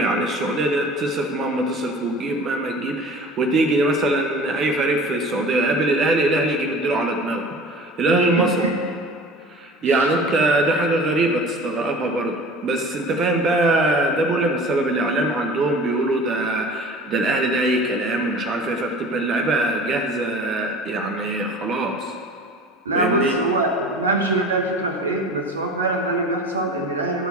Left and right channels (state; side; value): normal; both; correlation 0.41